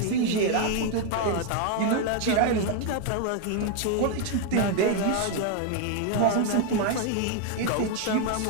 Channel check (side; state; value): both; different; correlation 0.00